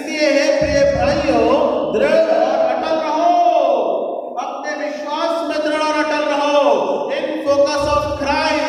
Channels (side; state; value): both; identical; correlation 1.00